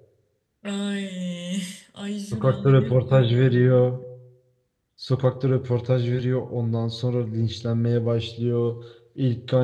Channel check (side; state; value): both; identical; correlation 1.00